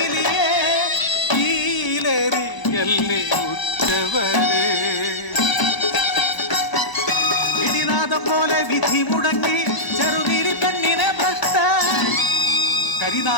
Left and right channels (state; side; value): late; right; 1.0 ms